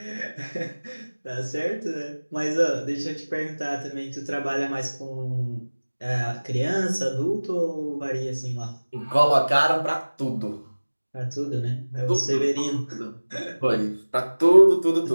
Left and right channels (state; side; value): inverted; both; correlation -1.00